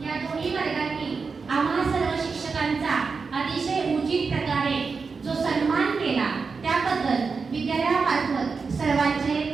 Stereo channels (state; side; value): quieter; left; 4.9 dB